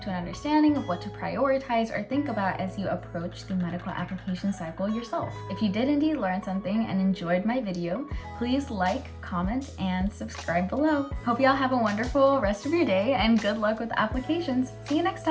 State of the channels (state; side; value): identical; both; correlation 1.00